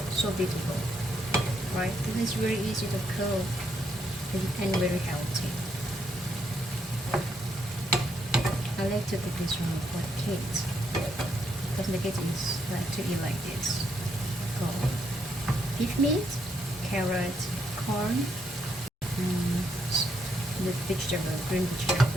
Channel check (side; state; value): both; normal; correlation 0.76